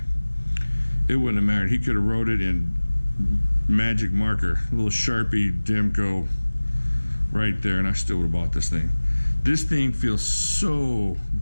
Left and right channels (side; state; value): both; inverted; correlation -1.00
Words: it wouldn't have mattered. He could have wrote it in magic marker, a little Sharpie Demko right there, and I still would have bought this thing. This thing feels so